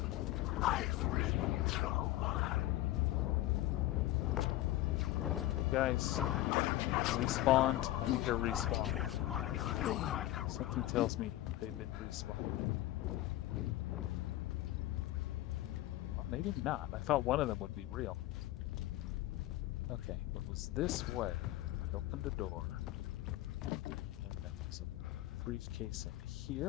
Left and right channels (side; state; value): right; quieter; 15.6 dB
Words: Guys, respawned. I think they're respawned. Something tells me they've been respawned. Well, maybe not. I thought one of them would be real. Okay, it was this way. I opened a door. And there's a briefcase in